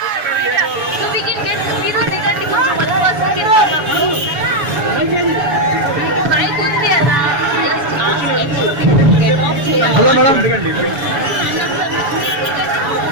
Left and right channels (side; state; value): left; late; 7.1 ms